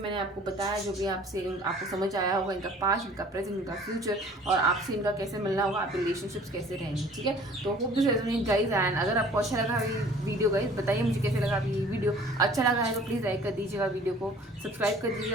आपको बताया, जो भी आपको समझ आया होगा, इनका पास्ट, इनका प्रेजेंट, इनका फ्यूचर, और आपसे इनका कैसे मिलना होगा, आपके रिलेशनशिप्स कैसे रहेंगे। ठीक है, तो hope this resonate guys. And अगर आपको अच्छा लगा ये वीडियो गाइज, बताइए मुझे कैसे लगा ये वीडियो। अच्छा लगा है तो प्लीज़ लाइक कर दीजिएगा, वीडियो को सब्सक्राइब कर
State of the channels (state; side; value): normal; both; correlation 0.50